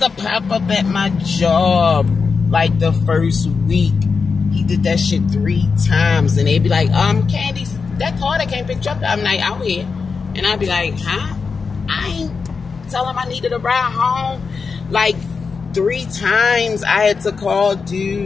to pop up at my job like the first week. He did that shit 3 times, and they'd be like, Candy, that car that came pick you up that night out here. And I'd be like, huh? I ain't tell him I needed a ride home. Like 3 times I had to call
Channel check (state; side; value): quieter; right; 5.1 dB